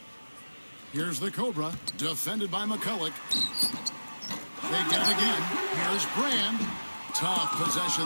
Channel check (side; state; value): both; inverted; correlation -1.00